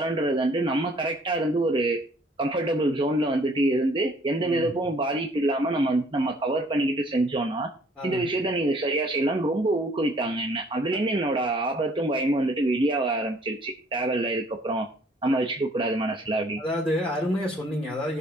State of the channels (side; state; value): both; normal; correlation 0.59